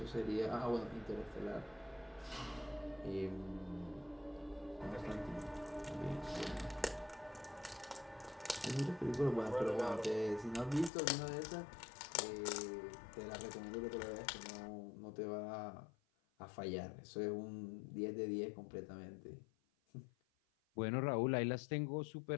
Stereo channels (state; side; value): drops out; right; at 10.9 s